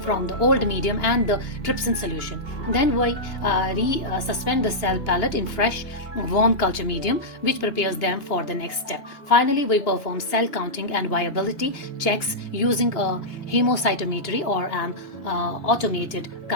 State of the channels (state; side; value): late; right; 2.5 ms